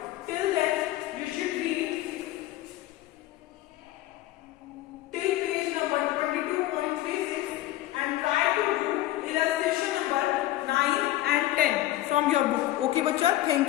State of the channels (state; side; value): quieter; right; 15.2 dB